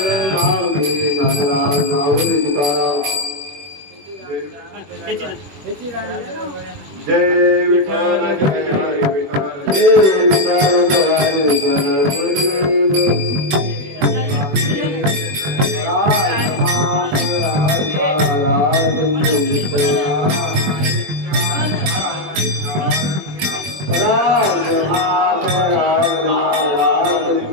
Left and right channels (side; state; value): left; late; 21 ms